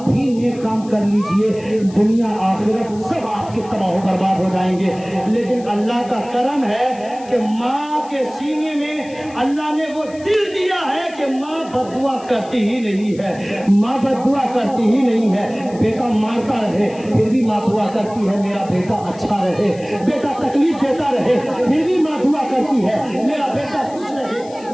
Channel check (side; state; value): left; noise; hiss, 23 dB below the sound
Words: بھی نیک کام کر لیجئے دنیا آخرت سب آپ کے تباہ و برباد ہو جائیں گے. لیکن اللہ کا کرم ہے کہ ماں کے سینے میں اللہ نے وہ دل دیا ہے کہ ماں بددعا کرتی ہی نہیں ہے. ماں بددعا کرتی ہی نہیں ہے. بیٹا مارتا رہے پھر بھی ماں دعا کرتی ہے میرا بیٹا اچھا رہے. بیٹا تکلیف دیتا رہے پھر بھی ماں دعا کرتی ہے میرا بیٹا خوش رہے,